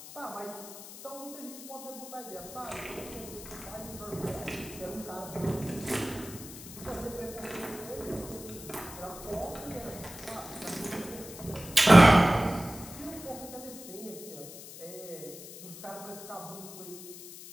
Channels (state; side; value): noise; left; hiss, 14 dB below the sound